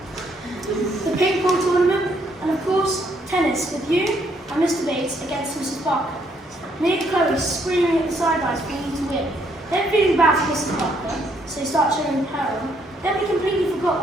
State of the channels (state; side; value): normal; both; correlation 0.70